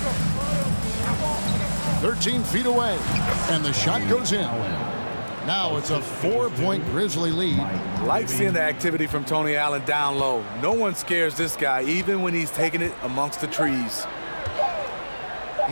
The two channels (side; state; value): both; inverted; correlation -1.00